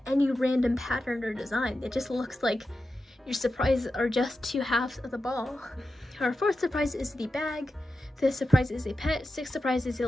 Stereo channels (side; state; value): both; normal; correlation 0.91